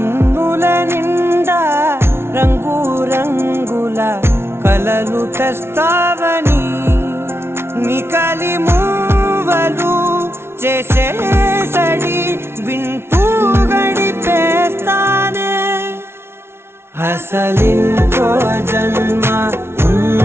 నిండా రంగు రంగుల కలలు తెస్తావని నికలి మూవలు చేసే సడి వింటూ గడిపేస్తానే అసలింకో జన్మ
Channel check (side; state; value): left; late; 0.12 ms